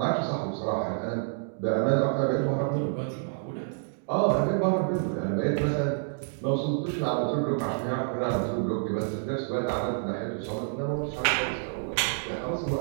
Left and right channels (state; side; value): silent; left; digital silence